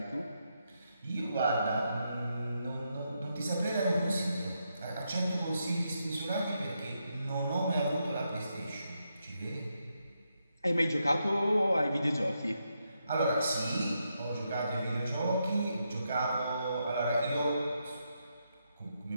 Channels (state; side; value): inverted; both; correlation -0.82